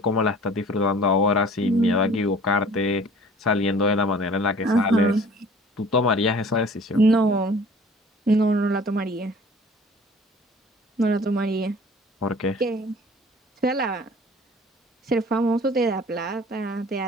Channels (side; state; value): both; normal; correlation 0.48